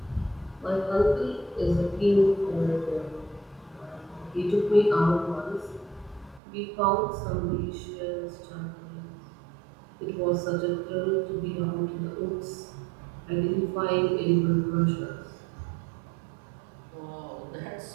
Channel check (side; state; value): left; drops out; at 6.4 s